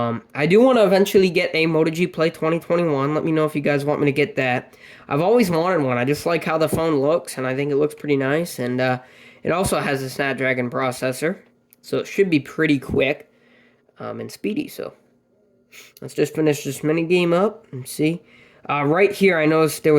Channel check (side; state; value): both; identical; correlation 1.00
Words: do want to eventually get a Moto G Play 2021. Let me know if you guys want me to get that. I've always wanted one. I just like how the phone looks, and I think it looks pretty nice. And it also has a Snapdragon processor, so it should be pretty quick and speedy. So let's just finish this mini game up and see. Right here, I noticed there